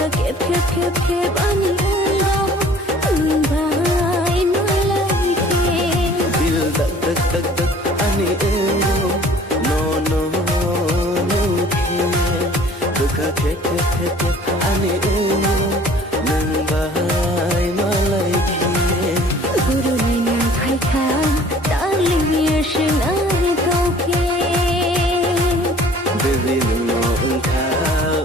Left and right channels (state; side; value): normal; both; correlation 0.51